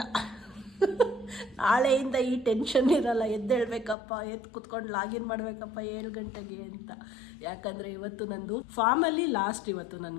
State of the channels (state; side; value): drops out; right; at 4.0 s